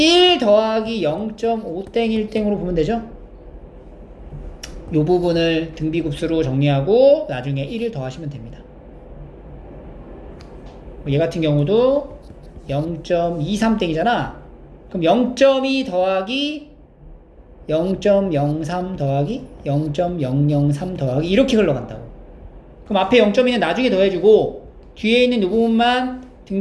더하기 0.5땡1땡으로 보면 되죠? 이 부분을 등비급수로 정리하고 나중에 1을 더하시면 됩니다. 얘 같은 경우도 0.23땡이잖아. 그럼 0.2 더하기 0.03 더하기 0.003 더하기 이렇게 흘러간다고. 그럼 앞에 0.2는 나중에 더해주고 뒤에 있는 이 부분만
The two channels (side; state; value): both; identical; correlation 1.00